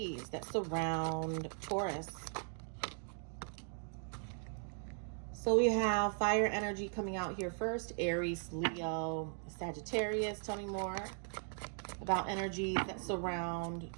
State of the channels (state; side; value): silent; left; 52 dB below the other